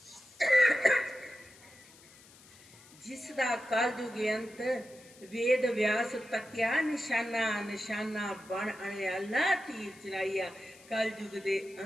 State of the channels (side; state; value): left; noise; hiss, 23 dB below the sound